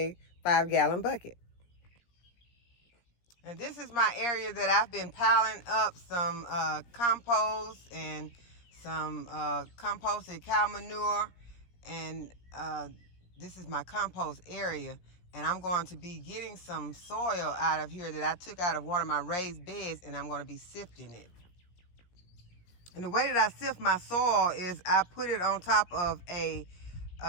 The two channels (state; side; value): late; right; 17 ms